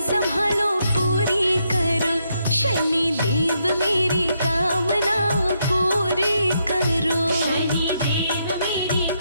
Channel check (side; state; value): both; inverted; correlation -0.78